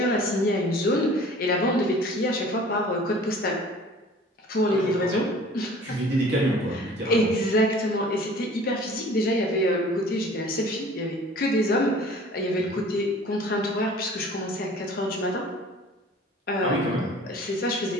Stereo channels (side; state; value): both; normal; correlation 0.47